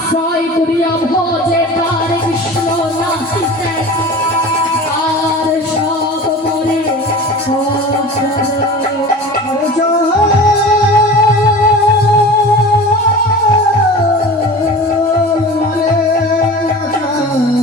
করিয়া ভজে তার কৃষ্ণ নাচিতে, আর সব মরে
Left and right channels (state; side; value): normal; both; correlation 0.36